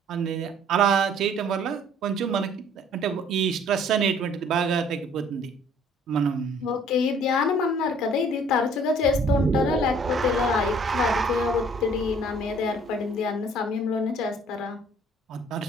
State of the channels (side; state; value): both; normal; correlation 0.56